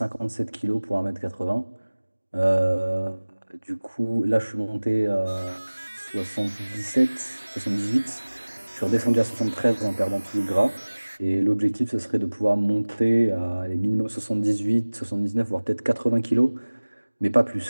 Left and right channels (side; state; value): both; inverted; correlation -1.00